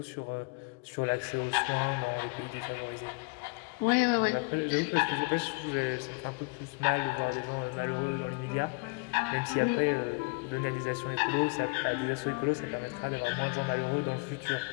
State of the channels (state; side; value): quieter; right; 30.7 dB